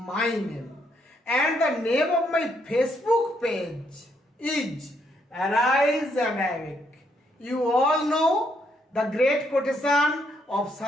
name and the name of my Facebook page is Arise and Awake. You all know the great quotation of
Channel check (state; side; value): normal; both; correlation 0.74